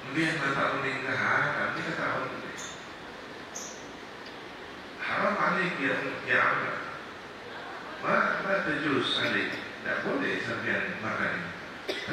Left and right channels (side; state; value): both; identical; correlation 1.00